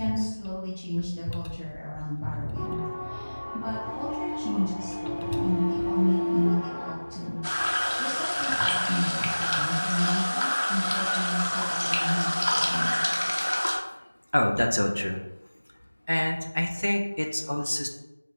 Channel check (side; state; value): both; inverted; correlation -1.00